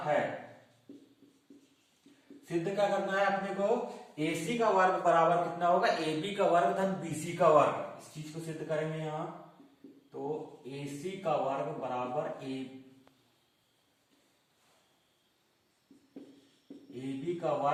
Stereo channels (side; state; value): both; identical; correlation 1.00